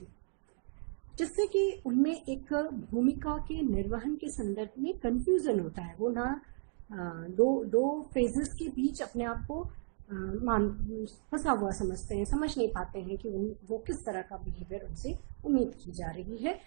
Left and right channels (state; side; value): silent; left; 55 dB below the other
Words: जिससे कि उनमें एक भूमिका के निर्वहन के संदर्भ में कंफ्यूजन होता है। वो ना दो फेजेस के बीच अपने आप को फंसा हुआ समझते हैं, समझ नहीं पाते हैं कि वो किस तरह का बिहेवियर उनसे उम्मीद की जा रही है,